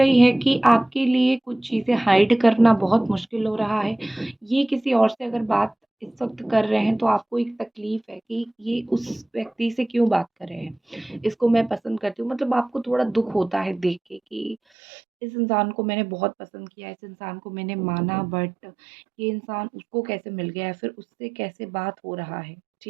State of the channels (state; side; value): drops out; left; at 14.6 s